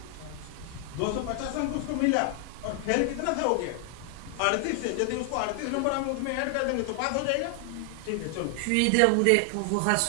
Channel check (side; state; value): both; different; correlation 0.00